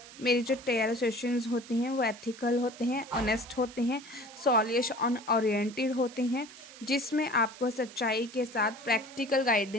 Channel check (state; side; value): noise; right; hiss, 18 dB below the sound